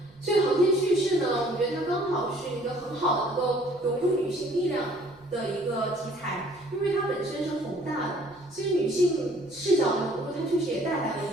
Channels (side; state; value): right; noise; rumble, 30 dB below the sound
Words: 所以航天叙事呢，我觉得它刚好是一个很好的能够融入女性力量的一个题材，因为它本身是宏大的，所以女性视角的融入，它确实也带来了